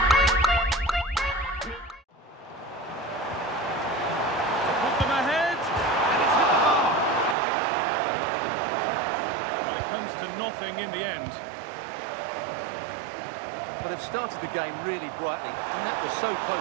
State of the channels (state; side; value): drops out; left; at 7.4 s